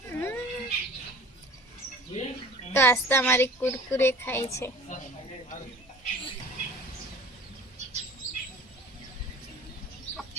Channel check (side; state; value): both; normal; correlation 0.45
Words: તો આસ્તા મારી કુરકુરે ખાય છે.